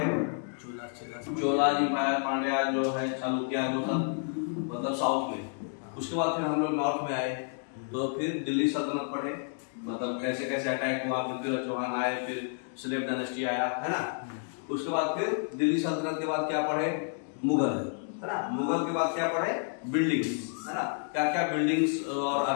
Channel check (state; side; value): silent; right; 58 dB below the other